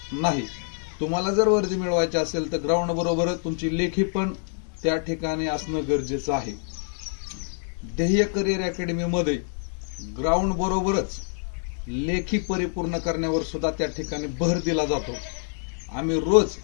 नाही. तुम्हाला जर वर्दी मिळवायची असेल तर ग्राउंड बरोबरच तुमची लेखी पण त्या ठिकाणी असणं गरजेचं आहे. ध्येय करिअर अकॅडमी मध्ये ग्राउंड बरोबरच लेखी परिपूर्ण करण्यावर सुद्धा त्या ठिकाणी भर दिला जातो. आम्ही रोज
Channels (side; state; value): right; silent; 61 dB below the other